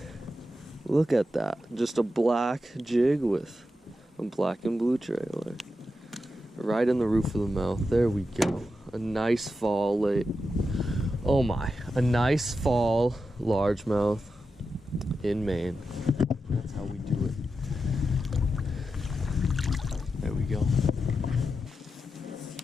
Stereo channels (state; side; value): normal; both; correlation 0.89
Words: Look at that. Just a black jig with a black and blue trailer. Right in the roof of the mouth. There we go. A nice fall late. Oh my. A nice fall largemouth in Maine. That's how we do it. There we go.